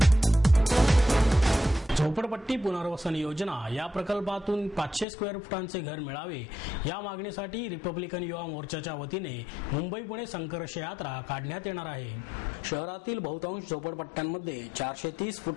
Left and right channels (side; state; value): right; drops out; at 5.1 s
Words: झोपडपट्टी पुनर्वसन योजना या प्रकल्पातून 500 स्क्वेअर फुटांचे घर मिळावे या मागणीसाठी रिपब्लिकन युवा मोर्चाच्या वतीने मुंबई पुणे संघर्ष यात्रा काढण्यात येणार आहे. शहरातील बहुतांश झोपडपट्ट्यांमध्ये 430